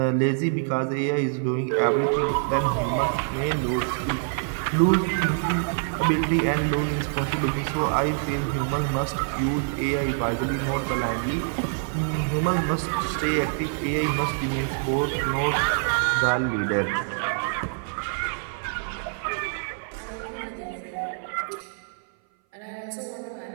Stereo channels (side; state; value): left; silent; 57 dB below the other